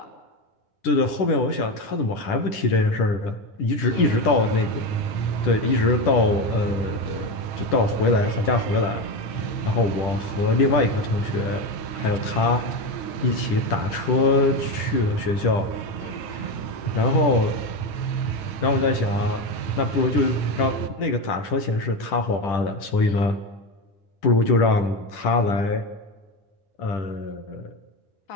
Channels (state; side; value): late; right; 10 ms